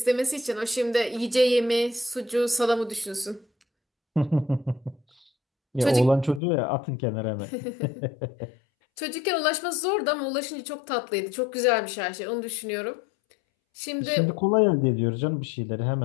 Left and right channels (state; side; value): drops out; right; at 6.4 s